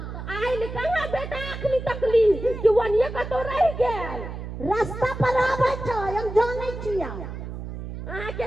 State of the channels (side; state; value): right; noise; hum, 8 dB below the sound